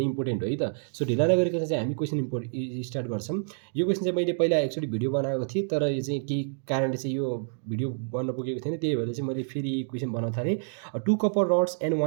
इम्पोर्टेन्ट हो है त। सो ढिला नगरिकन चाहिँ हामी क्वेसन स्टार्ट गर्छौँ। यो क्वेसन चाहिँ मैले पहिला एक्चुअली भिडियो बनाएको थिएँ, तर यो चाहिँ केही कारणले चाहिँ यो भिडियो बन्न पुगेको थिएन, त्यही भएर चाहिँ मैले फेरि क्वेसन बनाउन थालेँ। 2 copper rods and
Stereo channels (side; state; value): left; silent; 59 dB below the other